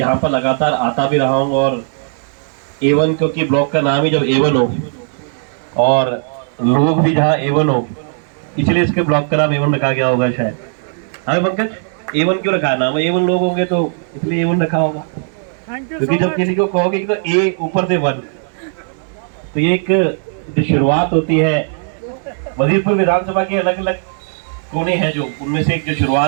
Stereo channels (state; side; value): silent; left; 68 dB below the other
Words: पर लगातार आता भी रहा हूँ, और A1, क्योंकि ब्लॉक का नाम ही जब A1 हो और लोग भी जहाँ A1 हो, इसलिए इसके ब्लॉक का नाम A1 रखा गया होगा शायद। हाँ पंकज, A1 क्यों रखा है नाम? A1 लोग होंगे तो इसलिए A1 रखा होगा, क्योंकि जब किसी को कहोगे कि तो A ऊपर से 1, तो ये एक जो शुरुआत होती है, वजीरपुर विधानसभा के अलग अलग कोने हैं, जो उनमें से एक जो